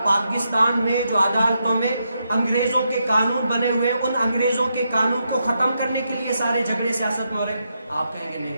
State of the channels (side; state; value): both; inverted; correlation -0.82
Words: پاکستان میں جو عدالتوں میں انگریزوں کے قانون بنے ہوئے ہیں، ان انگریزوں کے قانون کو ختم کرنے کے لیے سارے جھگڑے سیاست میں ہو رہے ہیں؟ آپ کہیں گے